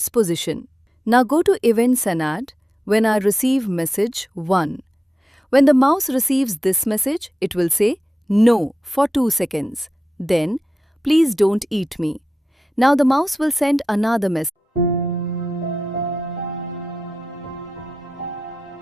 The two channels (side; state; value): both; normal; correlation 0.91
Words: position. Now go to Events and add When I receive message 1. When the mouse receives this message, it will say No for 2 seconds. Then, please don't eat me. Now the mouse will send another message.